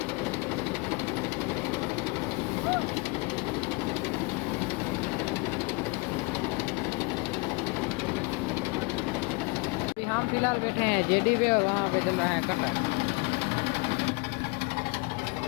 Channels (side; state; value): right; quieter; 28.0 dB